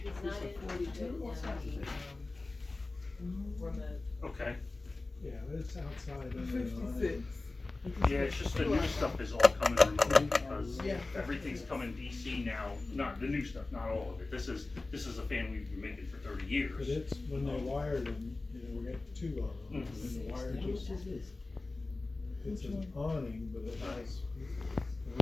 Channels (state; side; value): quieter; right; 3.3 dB